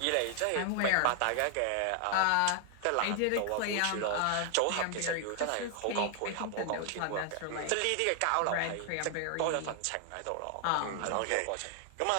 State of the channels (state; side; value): different; both; correlation 0.00